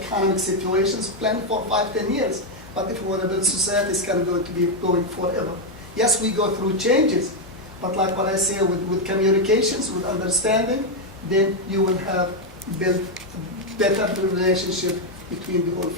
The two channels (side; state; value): both; normal; correlation 0.03